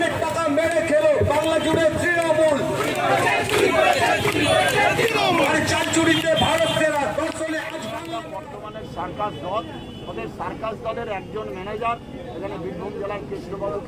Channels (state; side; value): identical; both; correlation 1.00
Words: টাকা মেরে খেলো, বাংলা জুড়ে তৃণমূল। চার চুরিতে ভারত সেরা, দর্শনে আজ বাংলা। বর্তমানে সার্কাস দল, ওদের সার্কাস দলের একজন ম্যানেজার এখানে বীরভূম জেলার